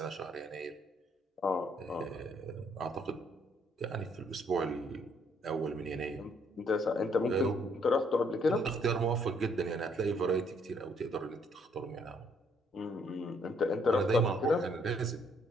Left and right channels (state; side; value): normal; both; correlation 0.67